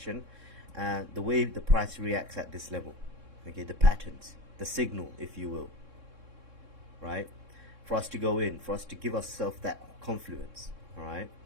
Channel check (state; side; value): late; left; 3.6 ms